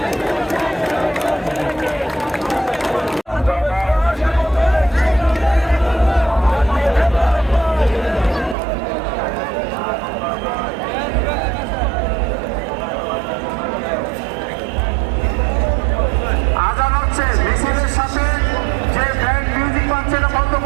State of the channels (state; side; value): drops out; left; at 8.6 s